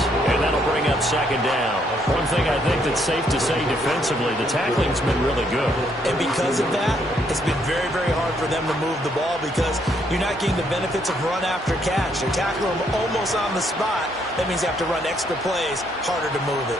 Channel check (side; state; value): both; normal; correlation 0.71